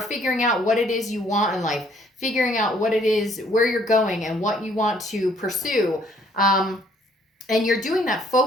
figuring out what it is you want in life, figuring out what it is, where you're going, and what you want to pursue. And you're doing that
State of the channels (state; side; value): normal; both; correlation 0.63